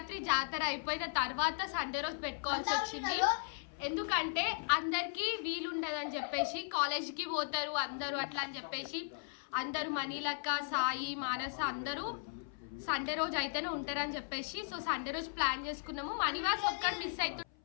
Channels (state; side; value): silent; right; 53 dB below the other